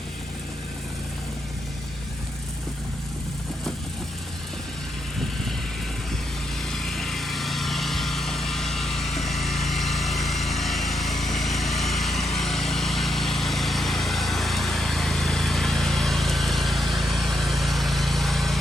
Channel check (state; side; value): normal; both; correlation 0.80